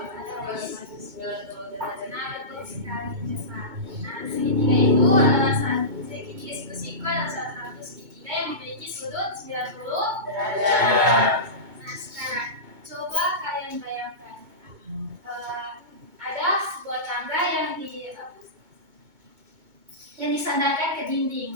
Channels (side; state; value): left; late; 2.2 ms